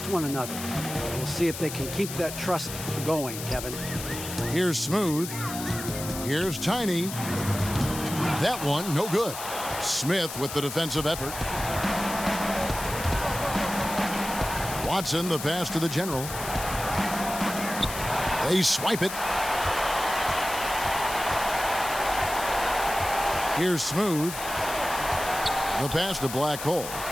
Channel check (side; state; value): left; noise; hiss, 8 dB below the sound